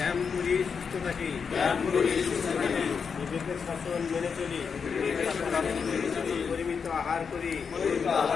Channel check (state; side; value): quieter; right; 6.0 dB